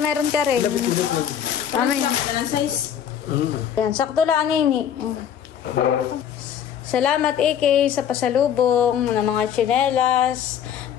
meron ka rin. Mamaya. Walang size. Yan, sakto lang, Nini. Salamat, Iki, sa pasalubong ng mga tsinelas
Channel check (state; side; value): quieter; right; 9.1 dB